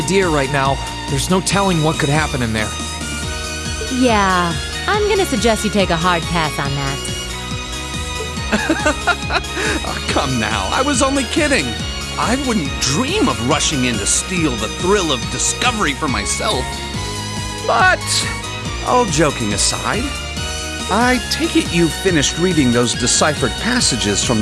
right now. There's no telling what could happen in there. Yeah, I'm gonna suggest you take a hard pass on that. Oh, come now, I was only kidding. I wouldn't dream of rushing in to steal the thrill of discovery for myself. But, all joking aside, I take it you finished reading those deciphered passages from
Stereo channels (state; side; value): identical; both; correlation 1.00